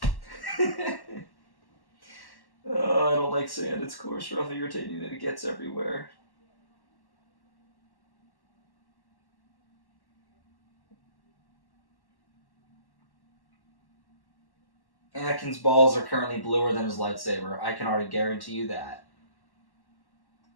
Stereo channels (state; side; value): late; right; 1.1 ms